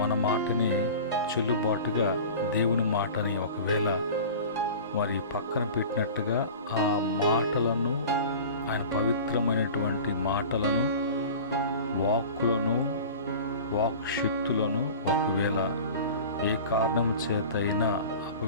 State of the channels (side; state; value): both; inverted; correlation -0.37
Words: మన మాటని చెల్లుబాటుగా దేవుని మాటని ఒకవేళ మరి పక్కన పెట్టినట్టుగా ఆ మాటలను, ఆయన పవిత్రమైనటువంటి మాటలను, వాక్కులను, వాక్శక్తులను ఒకవేళ ఏ కారణం చేతైనా